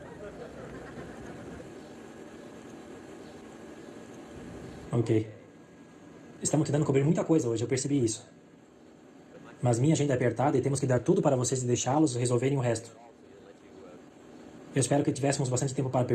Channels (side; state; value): both; identical; correlation 1.00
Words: Ok. Estamos tentando cobrir muita coisa hoje, eu percebi isso. Mas minha agenda é apertada e temos que dar tudo para vocês e deixá-los resolverem o resto. Eu espero que tivéssemos bastante tempo para